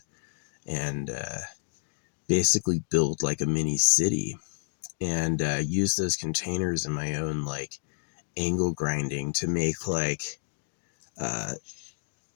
and basically build like a mini city, and use those containers in my own like angle grinding to make like uh,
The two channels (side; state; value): right; silent; digital silence